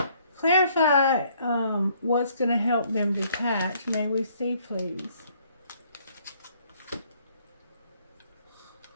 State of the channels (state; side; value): inverted; both; correlation -0.64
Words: Clarify what's going to help them detach. May we see, please?